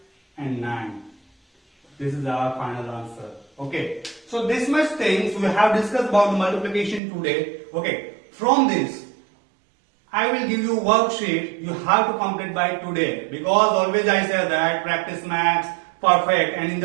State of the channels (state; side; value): drops out; left; at 7.0 s